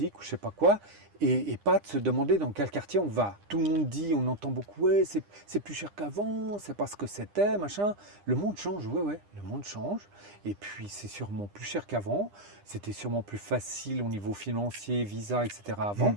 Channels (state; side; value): late; left; 9.9 ms